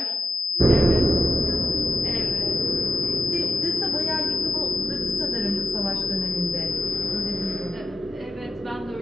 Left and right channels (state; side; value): normal; both; correlation 0.89